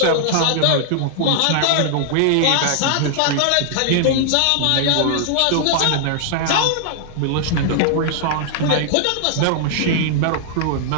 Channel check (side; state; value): both; different; correlation -0.01